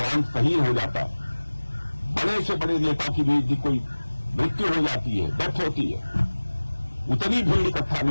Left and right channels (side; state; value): both; inverted; correlation -1.00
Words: शहीद हो जाता है, बड़े से बड़े नेता की भी यदि कोई मृत्यु हो जाती है, डेथ होती है, उतनी भीड़ इकट्ठा